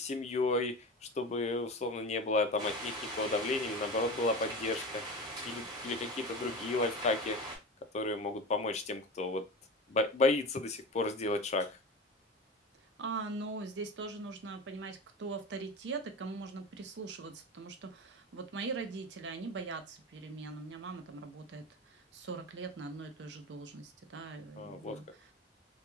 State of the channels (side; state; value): both; normal; correlation 0.28